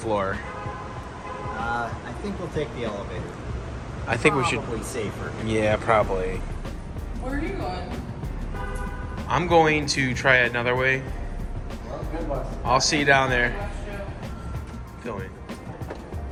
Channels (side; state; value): both; identical; correlation 1.00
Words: I think we'll take the elevator. I think we should. Probably safer. Yeah, probably. Where are you going? I'm going to try it another way. I'll see you down there. Filming.